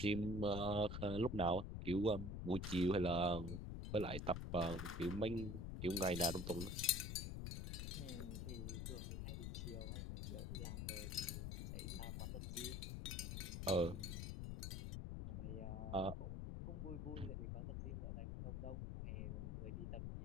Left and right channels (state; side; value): noise; left; rumble, 3 dB below the sound